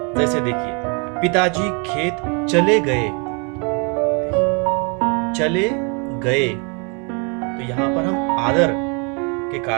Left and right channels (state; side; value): quieter; left; 34.9 dB